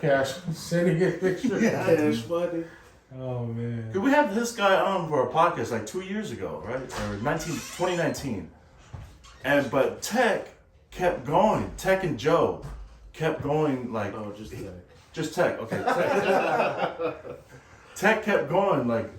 sending a picture. Yeah. It's funny. Oh man. We had this guy on for a podcast like 2 years ago, right? Or 2019. But Tech kept going. Tech and Joe kept going like Oh, just Tech, okay. Tech. Tech kept going, like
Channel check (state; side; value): identical; both; correlation 1.00